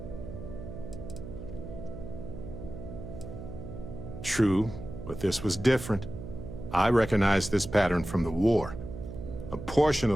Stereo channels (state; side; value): noise; right; hum, 10 dB below the sound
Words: True, but this was different. I recognized this pattern from the war. A portion